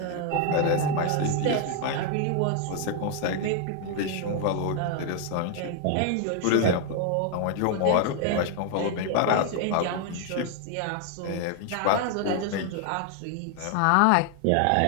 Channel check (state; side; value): different; both; correlation 0.00